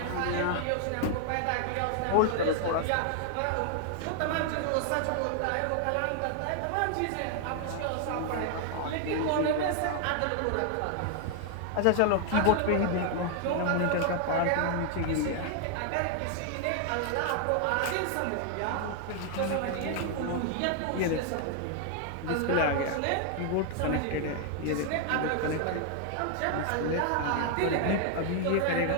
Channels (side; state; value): both; different; correlation 0.00